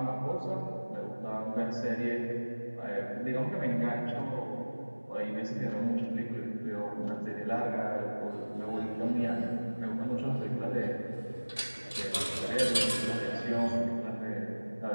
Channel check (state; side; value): inverted; both; correlation -1.00